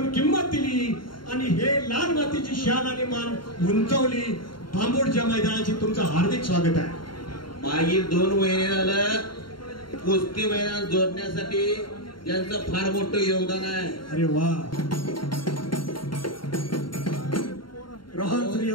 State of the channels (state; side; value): late; right; 0.72 ms